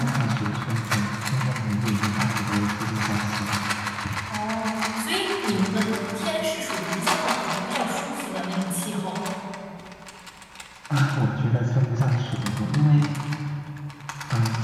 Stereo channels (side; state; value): both; identical; correlation 1.00